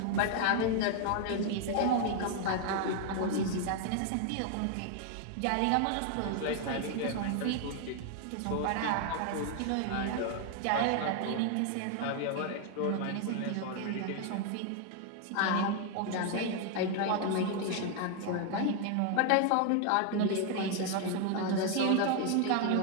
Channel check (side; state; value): both; different; correlation 0.00